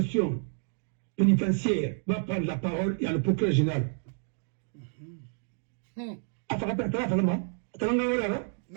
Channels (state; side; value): silent; left; 58 dB below the other